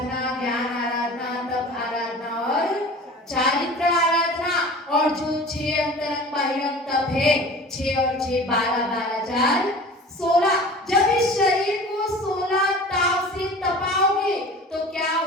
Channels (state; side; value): normal; both; correlation 0.40